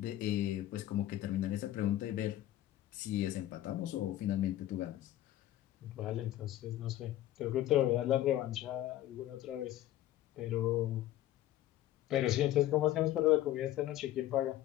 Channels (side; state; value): right; quieter; 13.9 dB